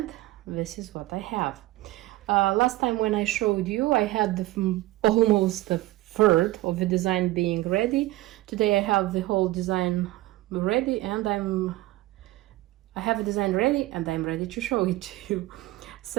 this is what I have. Last time when I showed you, I had almost a third of the design being ready. Today I have the whole design ready, and I have a design ready and I'm ready to show it to you.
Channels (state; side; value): quieter; left; 17.8 dB